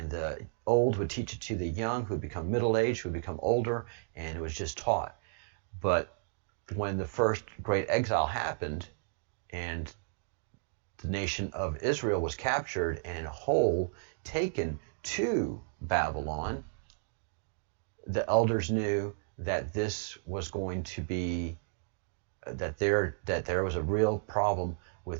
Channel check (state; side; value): silent; left; digital silence